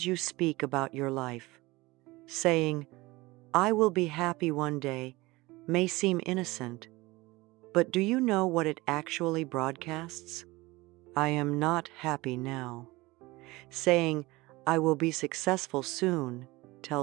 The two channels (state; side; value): quieter; left; 21.4 dB